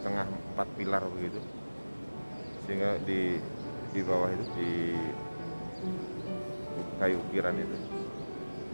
4 pilar begitu, sehingga di bawah itu di kayu ukiran itu,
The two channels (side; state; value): both; inverted; correlation -1.00